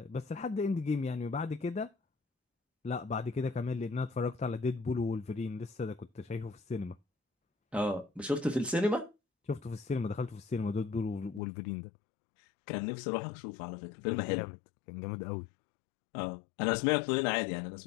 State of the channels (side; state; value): right; drops out; at 11.4 s